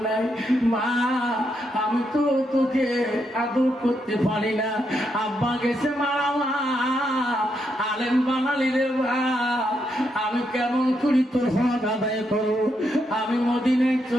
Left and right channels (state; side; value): normal; both; correlation 0.80